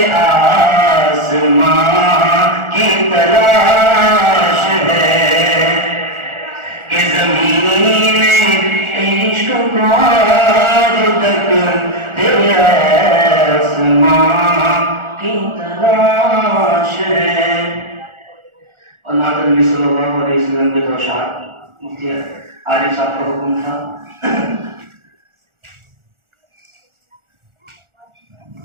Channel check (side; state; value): left; late; 1.4 ms